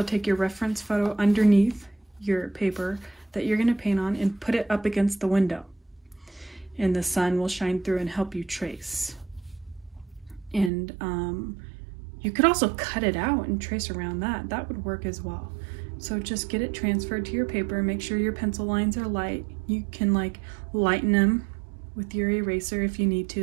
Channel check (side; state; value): left; drops out; at 10.7 s